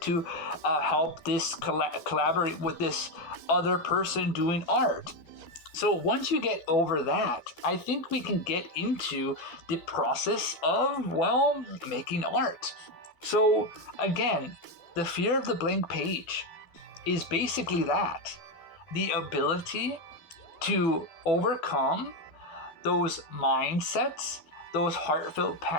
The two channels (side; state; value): right; late; 13 ms